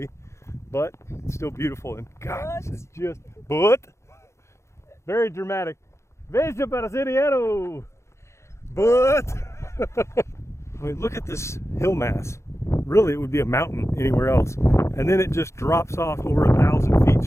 but it's still beautiful. And God, this is just, but very dramatic. Veja brasileiro, but I mean, look at this hill mass. Really, it would be a mountain anywhere else, and then it just drops off over 1,000 feet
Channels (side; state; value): right; late; 0.14 ms